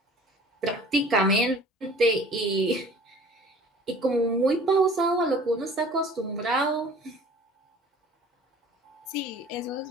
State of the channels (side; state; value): both; normal; correlation 0.47